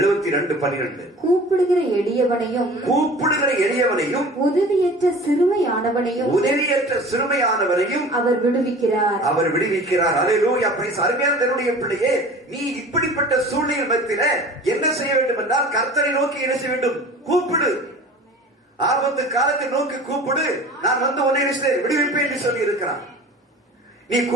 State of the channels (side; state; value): both; normal; correlation 0.41